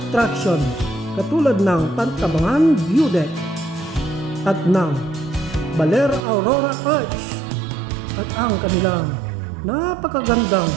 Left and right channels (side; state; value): left; drops out; at 6.2 s